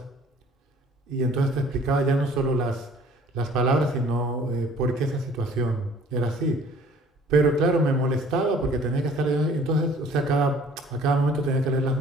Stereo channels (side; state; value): both; normal; correlation 0.53